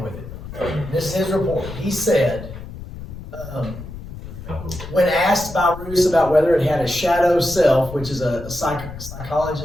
with it. This is his report. He said, when asked by Roos about whether it had a shadow self, which is a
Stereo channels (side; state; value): left; noise; rumble, 12 dB below the sound